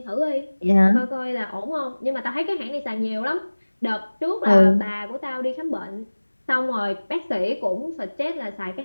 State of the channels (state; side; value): inverted; both; correlation -1.00